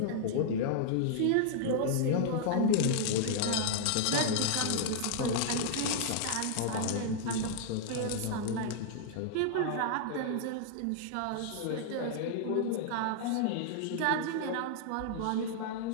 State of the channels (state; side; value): different; both; correlation -0.01